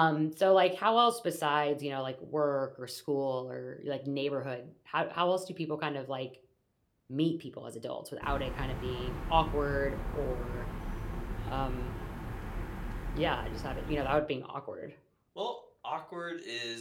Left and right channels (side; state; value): both; identical; correlation 1.00